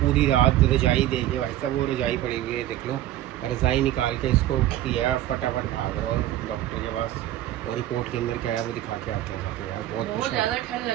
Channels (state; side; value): quieter; left; 13.5 dB